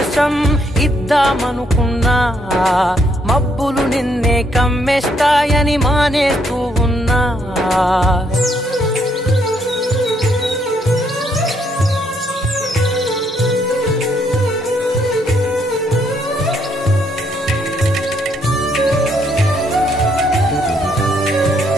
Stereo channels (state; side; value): normal; both; correlation 0.72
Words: ఇద్దామనుకున్నా, మబ్బులు నిన్నే కమ్మేస్తాయని మానేస్తూ ఉన్నా.